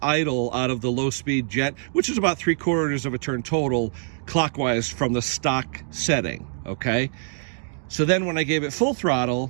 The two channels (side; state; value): left; silent; digital silence